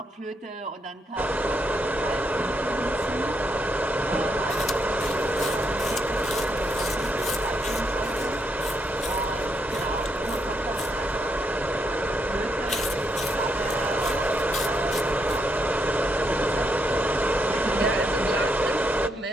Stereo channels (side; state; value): both; normal; correlation 0.78